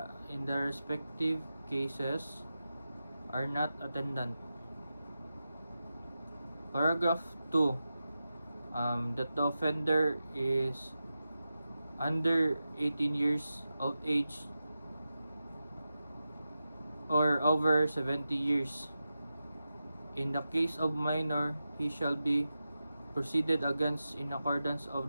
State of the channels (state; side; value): inverted; both; correlation -0.91